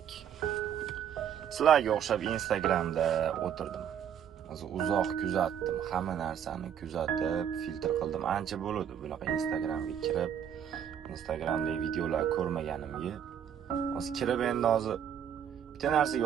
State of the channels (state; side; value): quieter; left; 8.9 dB